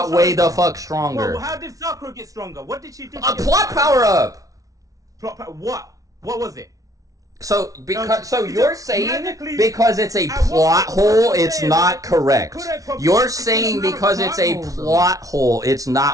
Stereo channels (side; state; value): left; late; 0.17 ms